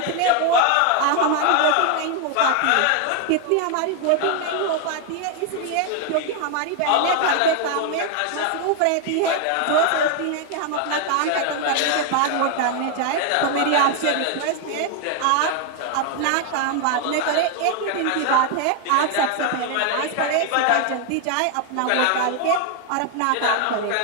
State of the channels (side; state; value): both; different; correlation 0.00